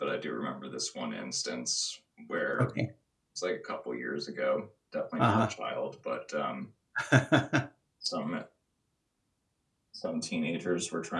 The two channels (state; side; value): identical; both; correlation 1.00